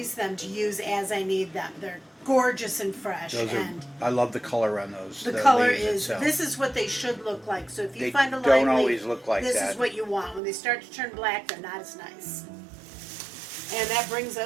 them to use as I need them. They're gorgeous and fresh. I love the color on those. The color is, this is what they should look like. So if you find a lime don't leaf, always look like this that. is what you want. When they start to turn black, they're not as nice. And that brings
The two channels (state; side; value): drops out; left; at 10.4 s